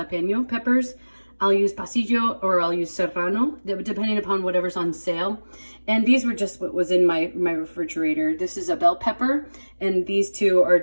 peppers. I'll use pasillo or I'll use serrano, depending upon whatever's on sale. And these were just what was in my refrigerator. This is a bell pepper, and these two are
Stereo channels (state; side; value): inverted; both; correlation -1.00